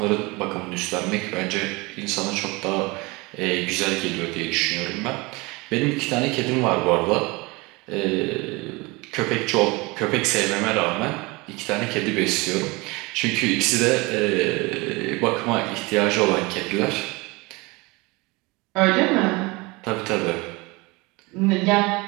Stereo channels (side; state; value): left; quieter; 24.8 dB